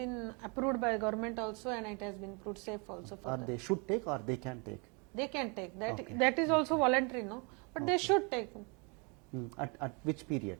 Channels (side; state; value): left; quieter; 32.6 dB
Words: approved by government also and it has been proved safe also for them. They should take or they can take? They can take. That is also voluntary, no? But they should take. At which period?